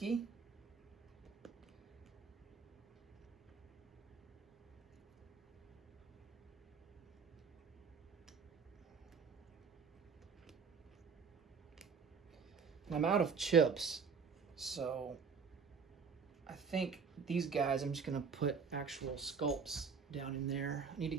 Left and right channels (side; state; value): left; quieter; 5.8 dB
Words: And I'm out of chips, so I think these guys, I'm just going to put actual sculpts down in there. I need to